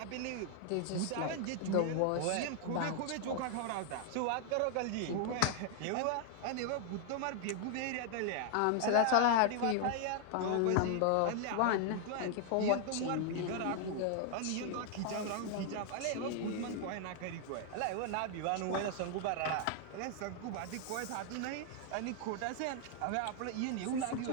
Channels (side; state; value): both; different; correlation 0.00